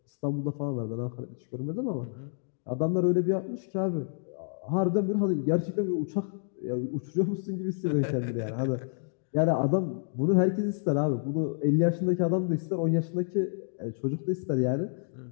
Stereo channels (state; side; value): silent; right; digital silence